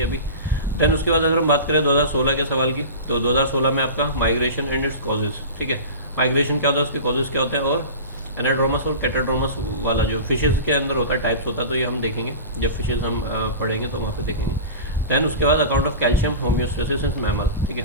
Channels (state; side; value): inverted; both; correlation -0.32